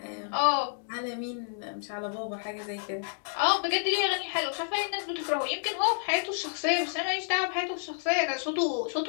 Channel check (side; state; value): right; silent; digital silence